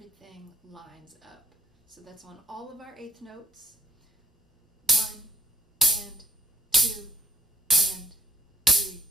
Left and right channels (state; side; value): normal; both; correlation 0.57